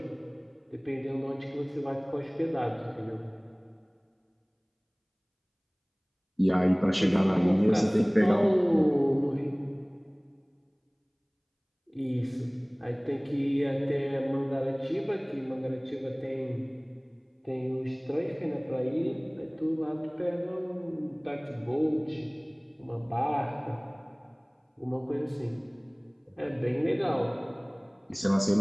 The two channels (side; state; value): both; identical; correlation 1.00